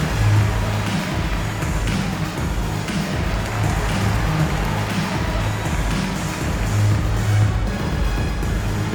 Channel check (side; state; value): both; identical; correlation 1.00